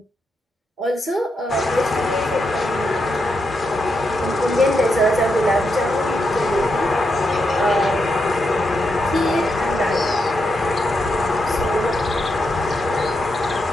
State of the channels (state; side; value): normal; both; correlation 0.83